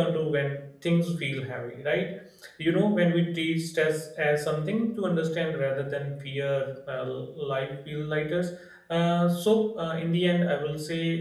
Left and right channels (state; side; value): identical; both; correlation 1.00